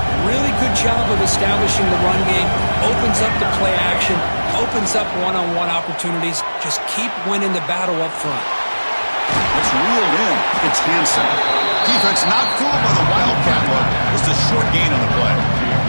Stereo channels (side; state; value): both; inverted; correlation -1.00